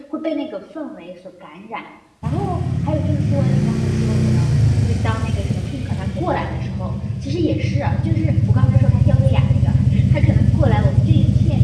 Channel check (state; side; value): identical; both; correlation 1.00